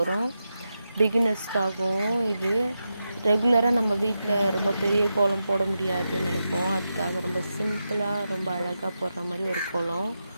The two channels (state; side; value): inverted; both; correlation -0.88